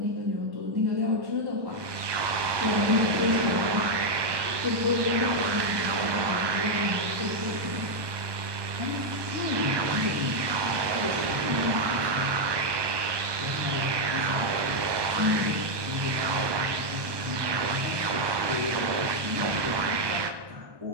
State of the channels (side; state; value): left; late; 1.2 ms